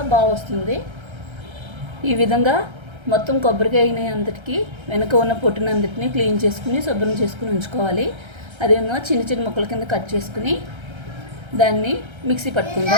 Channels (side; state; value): left; late; 1.3 ms